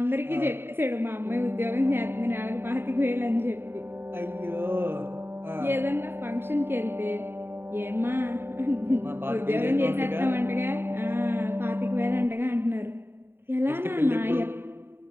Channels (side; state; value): left; late; 0.11 ms